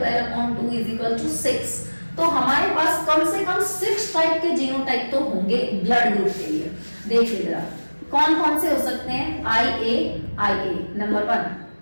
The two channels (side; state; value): both; inverted; correlation -1.00